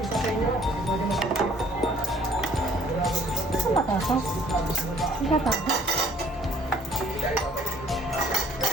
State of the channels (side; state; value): both; normal; correlation 0.59